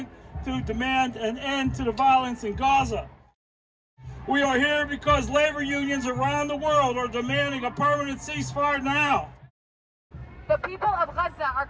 to demand an end to the violence in Gaza. We are here because labor unions around the world are demanding a permanent ceasefire now. The people of Gaza are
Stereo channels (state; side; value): identical; both; correlation 1.00